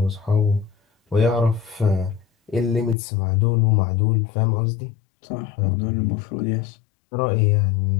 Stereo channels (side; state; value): right; drops out; at 3.0 s